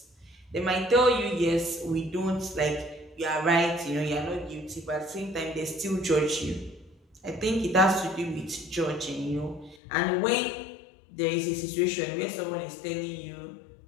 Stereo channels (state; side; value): drops out; right; at 9.8 s